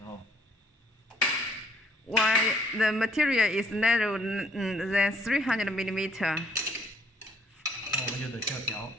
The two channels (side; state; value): both; normal; correlation 0.64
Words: 候， While the material is narrower than 300 millimeter. 那我们就得需要调。